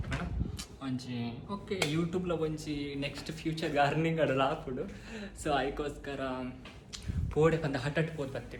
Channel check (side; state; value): both; identical; correlation 1.00